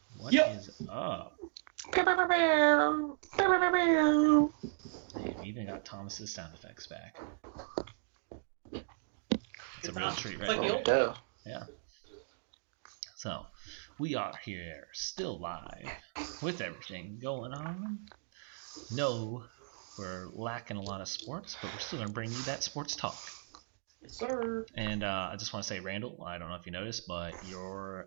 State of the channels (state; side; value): silent; left; digital silence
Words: What is up? They've even got Thomas's sound effects back. It's a real treat, right there. Yeah. So, we are here, still live, with everything going on. No, we're lacking a lot of sports, but we're still going to bring you that sports talk. Yes, sir. And I just want to say, Randall, I don't know if you noticed, but your